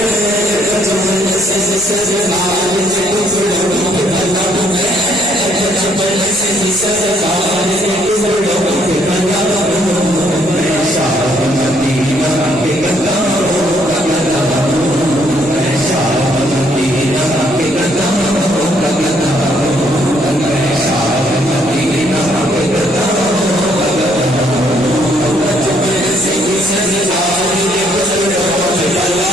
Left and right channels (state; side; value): noise; right; rumble, 23 dB below the sound